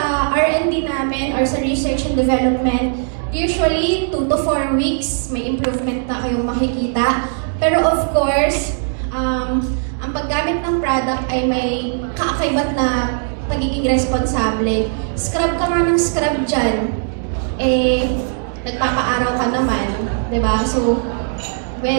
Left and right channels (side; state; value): left; silent; 67 dB below the other